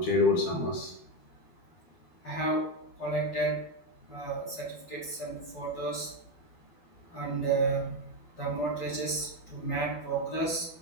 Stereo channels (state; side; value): late; right; 12 ms